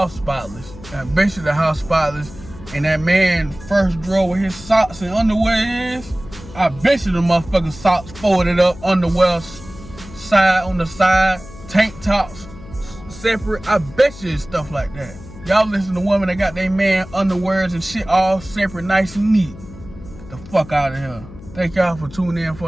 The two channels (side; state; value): left; noise; hum, 17 dB below the sound